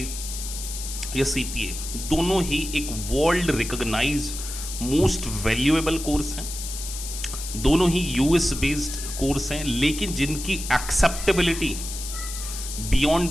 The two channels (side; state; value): left; noise; hiss, 8 dB below the sound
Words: या सीपीए, दोनों ही एक world recognise most valuable course हैं। दोनों ही यूएस बेस्ड कोर्स हैं, लेकिन जिनकी acceptability beyond